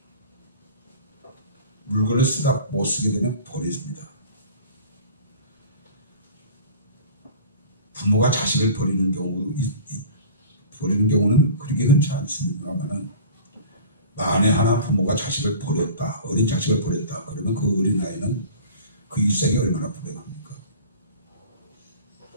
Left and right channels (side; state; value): both; inverted; correlation -0.41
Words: 물건을 쓰다 못 쓰게 되면 버립니다. 부모가 자식을 버리는 경우는 그렇게 흔치 않습니다만은, 만에 하나 부모가 자식을 버렸다, 어린 자식을 버렸다, 그러면 그 어린아이는 그 일생이 얼마나 불행합니까?